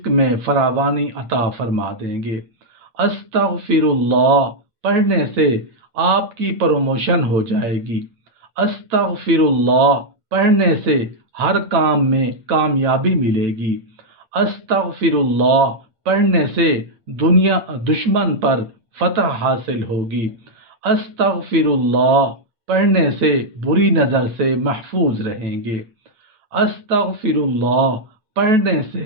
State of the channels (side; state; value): left; late; 8.7 ms